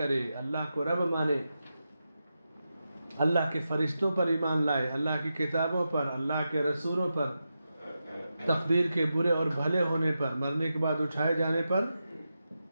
اللہ کو رب مانے، اللہ کے فرشتوں پر ایمان لائے، اللہ کی کتابوں پر، اللہ کے رسولوں پر، تقدیر کے برے اور بھلے ہونے پر، مرنے کے بعد اٹھائے جانے پر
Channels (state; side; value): inverted; both; correlation -0.89